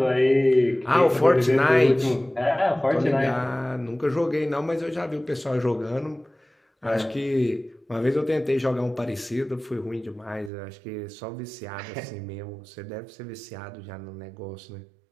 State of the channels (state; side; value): drops out; left; at 10.5 s